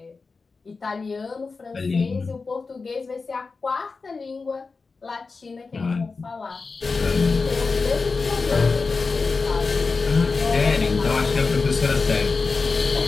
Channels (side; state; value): right; quieter; 4.3 dB